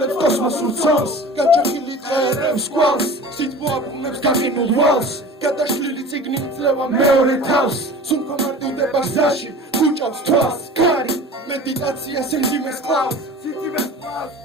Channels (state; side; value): normal; both; correlation 0.39